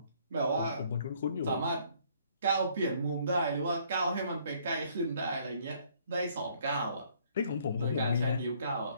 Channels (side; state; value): both; inverted; correlation -0.63